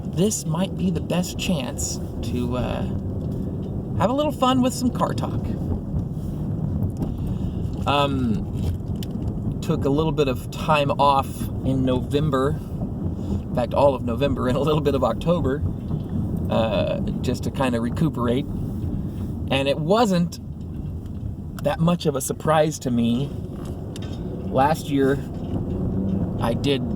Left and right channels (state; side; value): identical; both; correlation 1.00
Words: this might be the best chance to have a little fun with some car talk. Took a little bit of time off in November, in fact all of November and a little bit of October, just to kind of recuperate. And it wasn't that much of a surprise to me. Last year I did